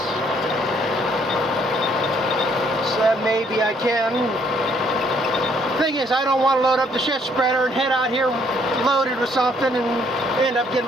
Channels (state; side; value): normal; both; correlation 0.66